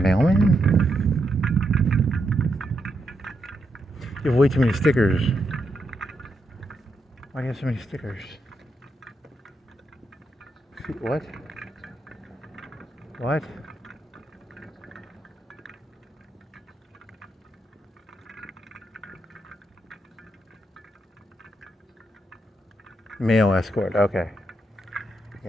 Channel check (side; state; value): both; normal; correlation 0.82